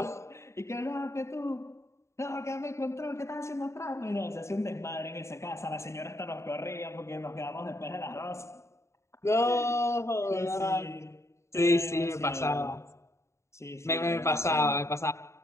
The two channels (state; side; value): late; right; 0.14 ms